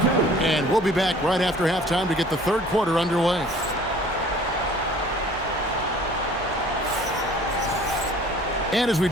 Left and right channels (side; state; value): both; normal; correlation 0.51